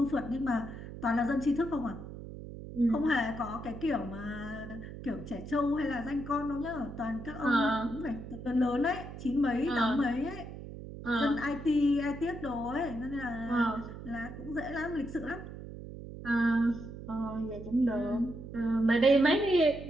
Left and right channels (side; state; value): right; noise; hum, 11 dB below the sound